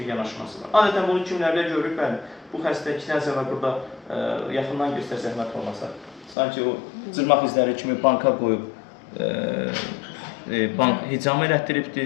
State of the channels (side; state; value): right; drops out; at 6.4 s